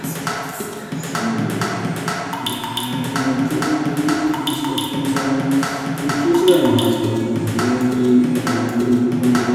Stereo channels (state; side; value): identical; both; correlation 1.00